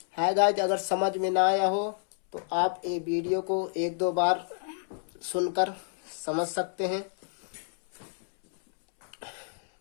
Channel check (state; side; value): silent; right; 59 dB below the other